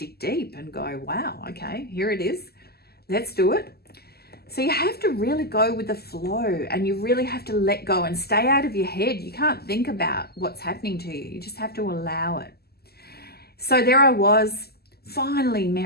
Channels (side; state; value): right; late; 0.46 ms